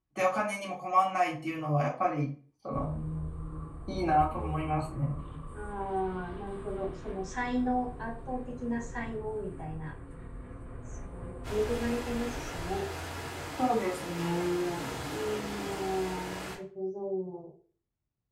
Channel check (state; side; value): identical; both; correlation 1.00